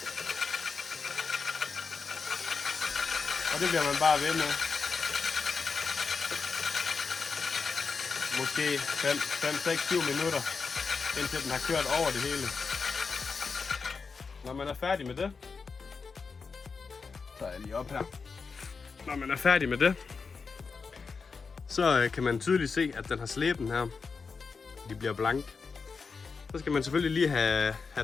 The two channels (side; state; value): right; quieter; 5.0 dB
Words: Og det bliver man bare ved med. Måske 5, 6, 7 minutter, indtil den har kørt over det hele. Når man er færdig med det, så er jeg lige op her. Når man er færdig med det, så kan man tydeligt se, at den har slæben her. De bliver blank. Så skal man selvfølgelig lige